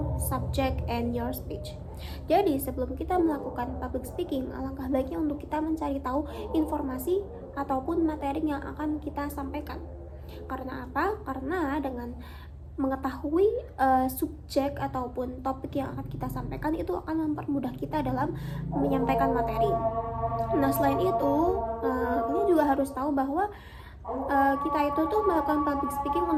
subject and your speech. Jadi sebelum kita melakukan public speaking, alangkah baiknya untuk kita mencari tahu informasi ataupun materi yang akan kita sampaikan. Karena apa? Karena dengan mengetahui subjek ataupun topik yang akan kita sampaikan itu akan mempermudah kita dalam menyampaikan materi. Nah, selain itu kita juga harus tahu bahwa kita itu tuh melakukan public speaking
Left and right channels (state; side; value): identical; both; correlation 1.00